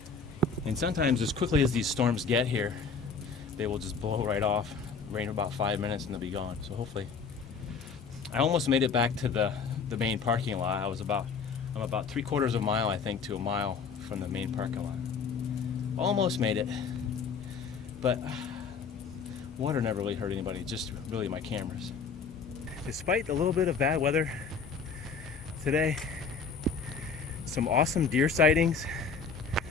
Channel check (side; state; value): right; quieter; 5.2 dB